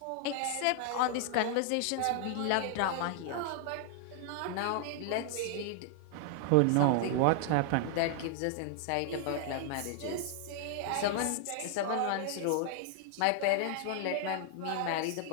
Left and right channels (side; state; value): both; different; correlation 0.00